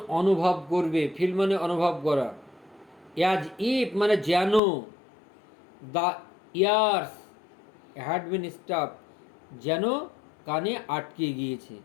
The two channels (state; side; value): drops out; right; at 4.6 s